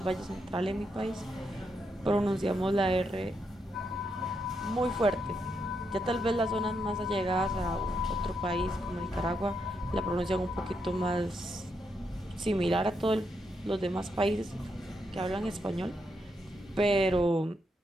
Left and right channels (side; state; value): both; normal; correlation 0.81